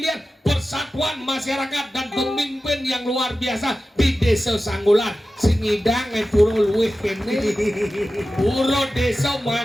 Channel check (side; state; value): both; normal; correlation 0.94